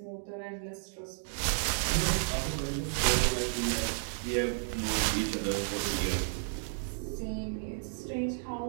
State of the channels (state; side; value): silent; left; digital silence